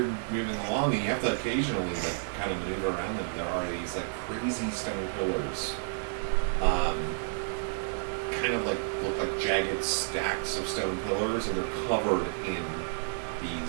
moving along, and you have to occasionally like kind of maneuver around them. There are these like crazy stone pillars, kind of like look like jagged stacks of stone pillars, and they're covered in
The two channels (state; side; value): silent; left; 57 dB below the other